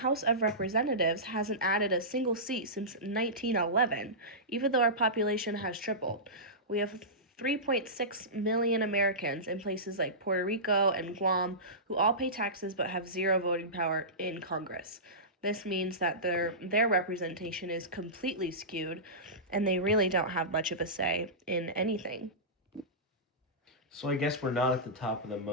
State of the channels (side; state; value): both; normal; correlation -0.19